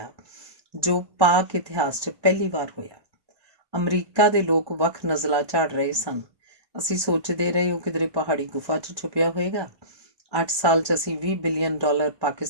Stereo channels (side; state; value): left; late; 1.2 ms